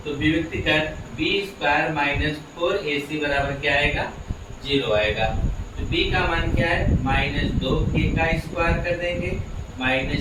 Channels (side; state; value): both; identical; correlation 1.00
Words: तो विविक्त कर बी स्क्वायर माइनस 4ac बराबर क्या आएगा 0 आएगा। तो b का मान क्या है माइनस 2k का स्क्वायर कर देंगे